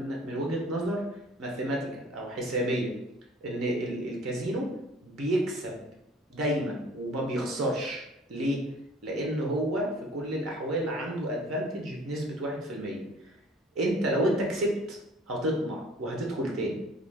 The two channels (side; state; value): both; normal; correlation 0.50